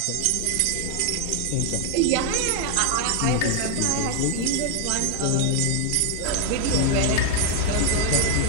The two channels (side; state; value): both; different; correlation 0.01